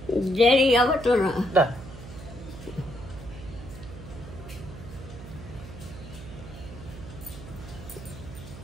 দেরি হবে তো না? না,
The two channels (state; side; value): noise; right; hum, 13 dB below the sound